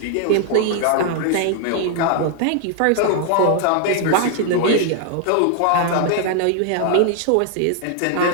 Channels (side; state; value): both; different; correlation 0.00